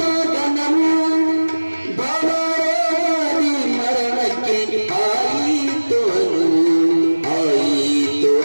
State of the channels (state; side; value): inverted; both; correlation -1.00